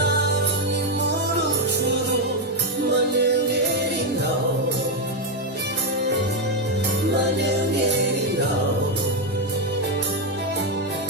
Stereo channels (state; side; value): normal; both; correlation 0.04